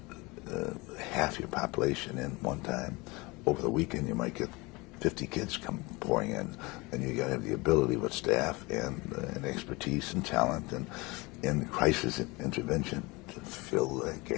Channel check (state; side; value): quieter; right; 24.8 dB